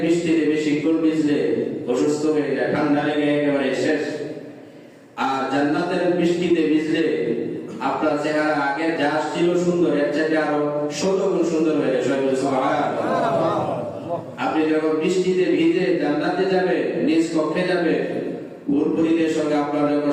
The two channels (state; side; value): identical; both; correlation 1.00